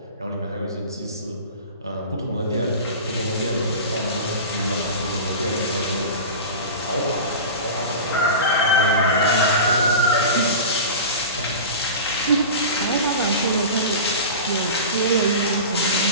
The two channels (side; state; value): both; inverted; correlation -0.31